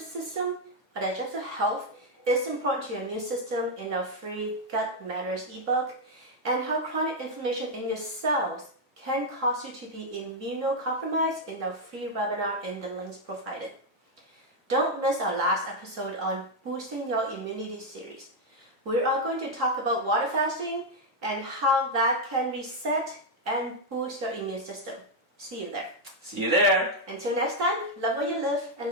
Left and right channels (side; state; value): both; normal; correlation 0.00